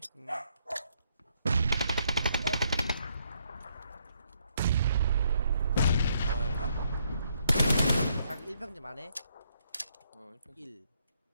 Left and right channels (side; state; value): both; inverted; correlation -0.71